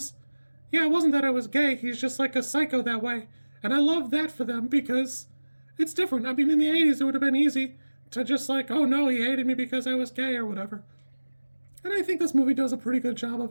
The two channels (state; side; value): inverted; both; correlation -1.00